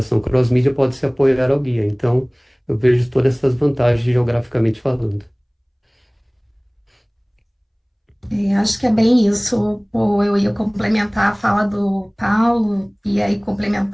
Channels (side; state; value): both; identical; correlation 1.00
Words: cross-mídia, pode se apoiar ao guia. Então, eu vejo todas essas vantagens geograficamente falando. Acho que é bem isso. Pô, eu ia complementar a fala do Paulo e aí